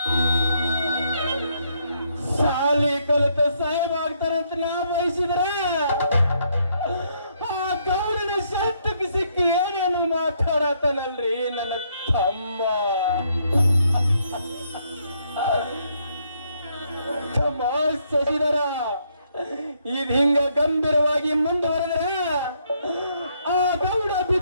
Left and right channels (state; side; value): inverted; both; correlation -0.73